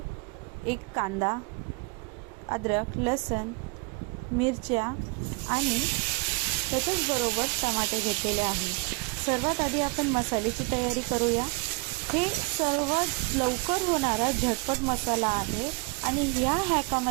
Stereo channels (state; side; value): quieter; left; 28.5 dB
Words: एक कांदा, अद्रक, लसूण, मिरच्या आणि त्याच्याच बरोबर टमाटे घेतलेले आहे। सर्वात आधी आपण मसाल्याची तयारी करूया। हे सर्वात लवकर होणारा झटपट मसाला आहे आणि या